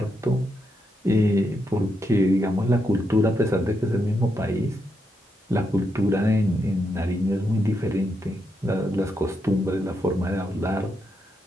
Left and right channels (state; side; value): normal; both; correlation 0.82